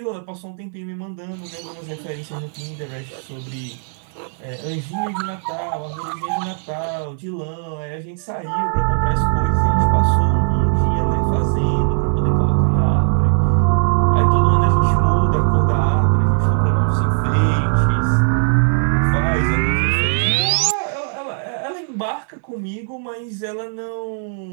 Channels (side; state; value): left; silent; 61 dB below the other